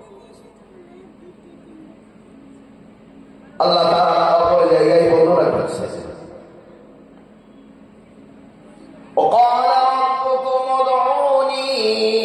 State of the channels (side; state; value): both; identical; correlation 1.00